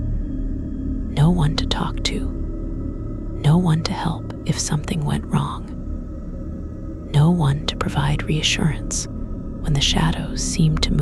one to talk to, no one to help if something went wrong, no one to provide reassurance when the shadows seemed to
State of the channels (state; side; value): identical; both; correlation 1.00